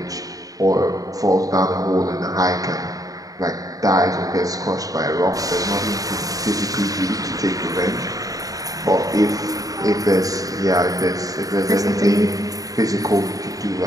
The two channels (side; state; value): left; late; 0.17 ms